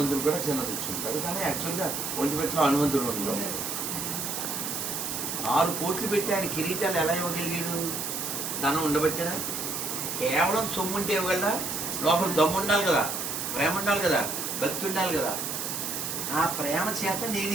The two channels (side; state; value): right; noise; hiss, 3 dB below the sound